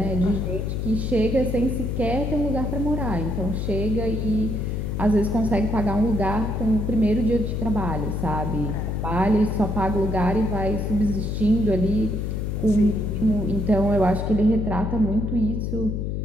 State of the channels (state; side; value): noise; left; hum, 2 dB below the sound